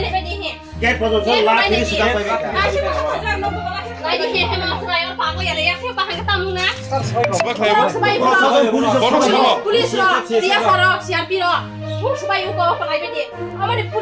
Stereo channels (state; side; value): identical; both; correlation 1.00